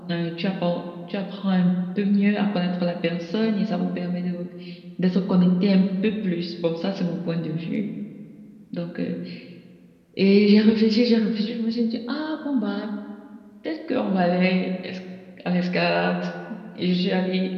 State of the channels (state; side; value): identical; both; correlation 1.00